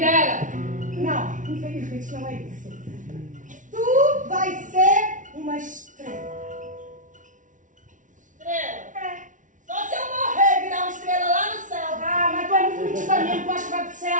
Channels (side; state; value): left; late; 0.37 ms